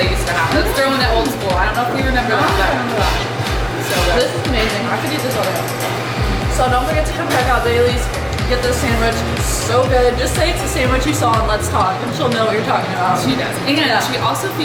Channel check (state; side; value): identical; both; correlation 1.00